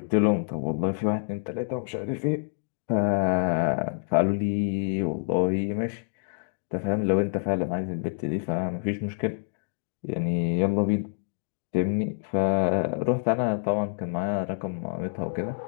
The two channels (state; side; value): silent; right; digital silence